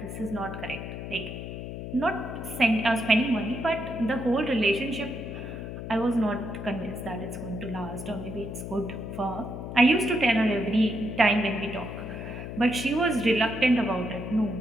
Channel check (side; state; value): left; noise; hum, 8 dB below the sound